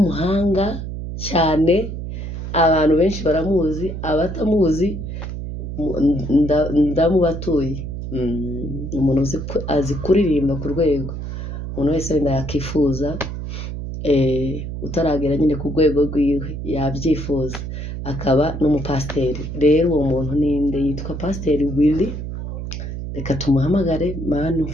cyane, abantu benshi baramuzi, abatamuzi ndamubatuye. Umuntu azi kuririmba ku rwego umuntu wese wenda yakifuza, utaragera nyine ku rwego rwiwe yabyifuza. Akaba n'umupasiteri. Rero uwo muntu ninde? Yitwa Pasiteri Willy. Reka tumuhamagare. Mana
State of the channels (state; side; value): noise; right; hum, 6 dB below the sound